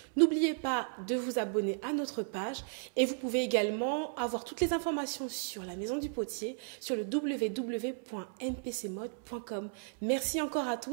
N'oubliez pas de vous abonner à notre page et vous pouvez également avoir toutes les informations sur la Maison du Potier sur le www.npcmode.com. Merci encore à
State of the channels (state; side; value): silent; left; 55 dB below the other